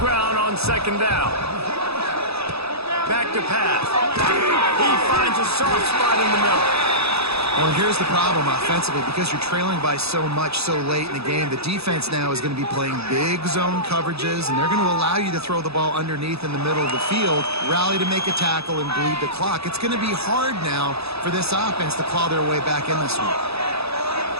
on second down. Back to pass. He finds a soft spot in the middle. Well, here's the problem offensively. Because you're trailing by so much so late in the game, the defense now is going to be playing big zone coverages, and they're going to allow you to throw the ball underneath in the middle of the field, rally to make a tackle, and bleed the clock. It's going to be hard now for this offense to claw their way back in this one.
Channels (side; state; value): left; late; 0.79 ms